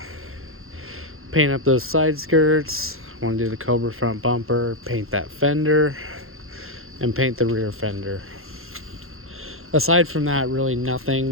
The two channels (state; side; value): late; left; 0.61 ms